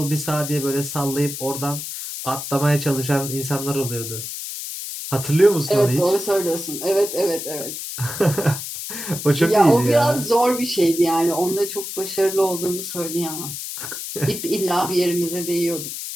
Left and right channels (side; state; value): left; noise; hiss, 7 dB below the sound